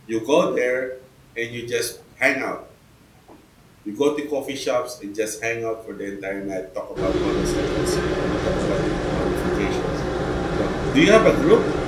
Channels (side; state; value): both; identical; correlation 1.00